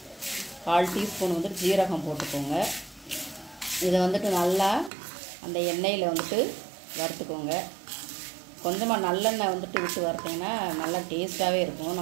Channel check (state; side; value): drops out; left; at 4.9 s